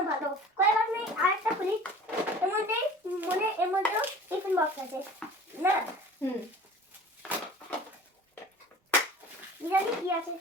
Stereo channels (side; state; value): both; normal; correlation 0.43